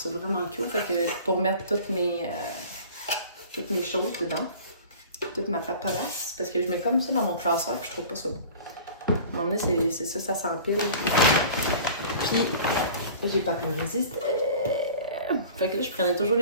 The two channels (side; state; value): both; inverted; correlation -0.43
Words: vraiment cool. Fait que pour mettre toutes mes choses dedans, toute ma paperasse, parce que je mets comme ça dans mon classeur, puis je trouve pas ça beau. À un moment donné, c'est ça, ça s'empile. Puis, j'ai pas pu résister. Fait que là, je prenais toujours